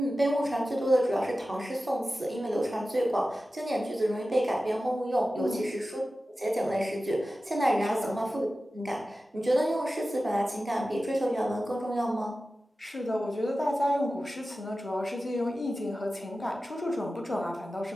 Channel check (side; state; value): both; normal; correlation 0.94